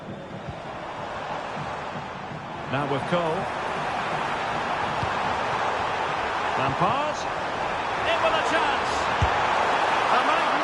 Now with Cole. Lampard. In with a chance. A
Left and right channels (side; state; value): both; identical; correlation 1.00